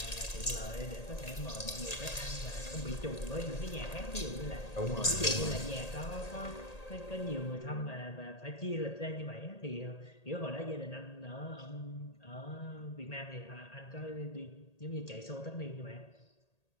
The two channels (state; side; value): late; right; 1.8 ms